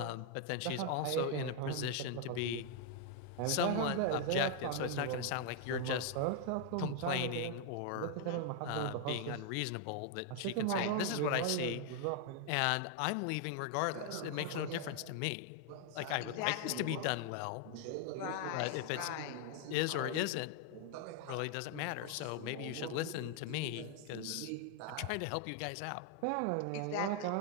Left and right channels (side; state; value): both; different; correlation 0.00